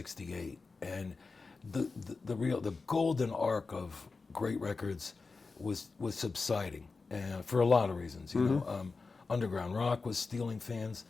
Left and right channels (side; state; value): right; quieter; 4.2 dB